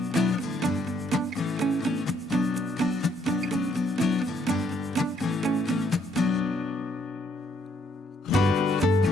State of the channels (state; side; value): normal; both; correlation 0.70